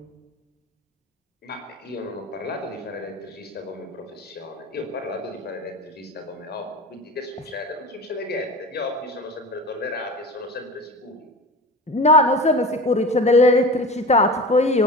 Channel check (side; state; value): both; normal; correlation 0.33